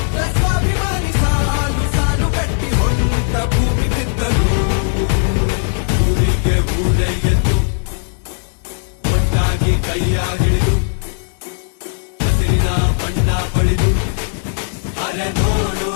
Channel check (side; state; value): right; silent; digital silence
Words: ಸ್ವಾಭಿಮಾನಿ, ಸಾಲು ಸಾಲು ಕಟ್ಟಿ ಹೊಂಟ ಭೂಮಿ ಬಿದ್ದರು, ಊರಿಗೆ ಊರೇ ಎದ್ದು ಒಟ್ಟಾಗಿ ಕೈಯ ಹಿಡಿದು